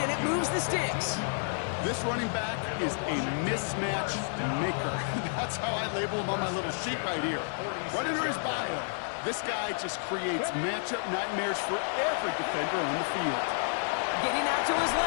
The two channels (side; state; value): right; silent; digital silence